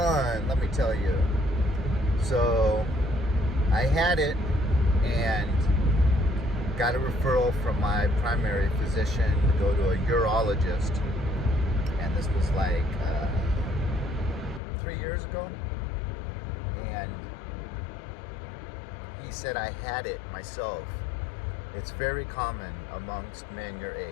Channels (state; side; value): drops out; right; at 14.6 s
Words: let me tell you. So I had it and got a referral from my primary physician to go to a urologist, and this was like 3 years ago, and he said I had it myself. It's very common amongst men your